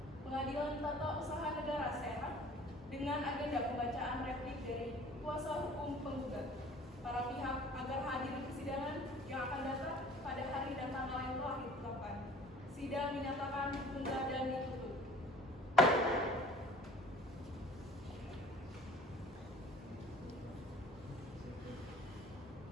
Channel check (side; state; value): both; normal; correlation 0.48